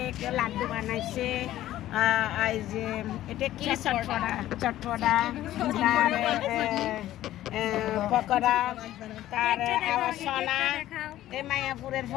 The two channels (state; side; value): quieter; right; 13.8 dB